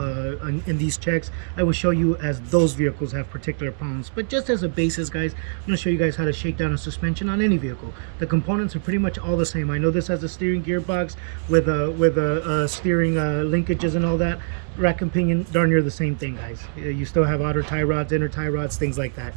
in these checks, I will show you as those vehicles have particular problems. But just as a basis, guys, I'm going to show you guys how to shake down a suspension on any vehicle. The components are pretty much all the same. I know this has a steering gearbox with a steering linkages and all that. Rack and pinion, darn near the same thing, guys. You still have outer tie rods, inner tie rods, things like that.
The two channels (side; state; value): left; silent; 63 dB below the other